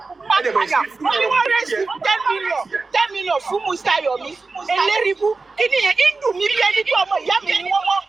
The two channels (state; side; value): quieter; left; 3.9 dB